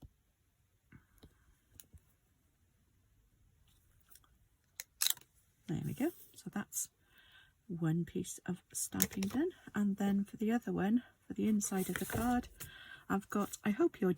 There we go. So that's one piece of stamping done. And then for the other one, for the inside of the card, I've got, I hope your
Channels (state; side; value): identical; both; correlation 1.00